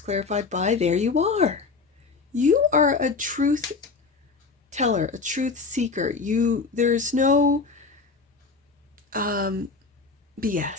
by, there you are. You are a truth teller, a truth seeker. There's no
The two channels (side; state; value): right; quieter; 4.5 dB